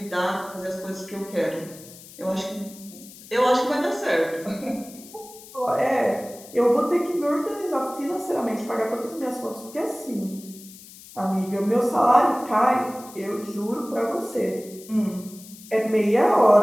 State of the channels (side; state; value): left; noise; hiss, 19 dB below the sound